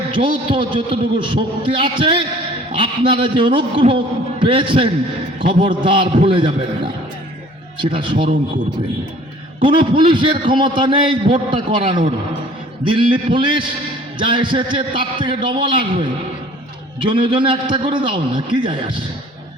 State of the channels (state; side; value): normal; both; correlation 0.51